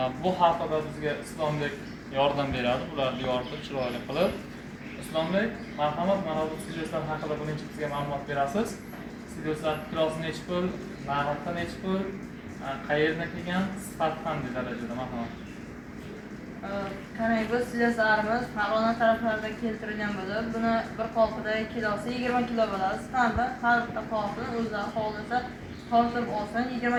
Bu haqida bizga Islombek yordam beradi, ularni yoritib chiroyli qilib. Islombek, marhamat, mana bu silyoslar haqida birinchi bizga ma'lumot berasiz. Silyoslar kilosi necha pul, narxi necha pul, qayerdan kelgan, sifat qanday darajada marhamat. Qarang, bu silyoslarimiz Farg'ona taraflaridan keltirilgan bo'lib, buni bir qolpida kilosi 20 kilo bo'ladi. Stampi har bitta qolpini o'zlari xohlasa tortib olsin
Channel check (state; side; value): identical; both; correlation 1.00